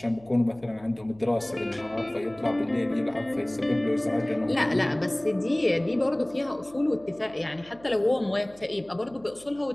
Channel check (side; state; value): right; noise; hum, 25 dB below the sound